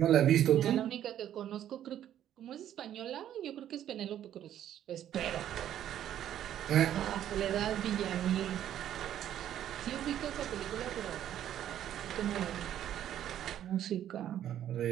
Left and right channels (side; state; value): left; quieter; 11.1 dB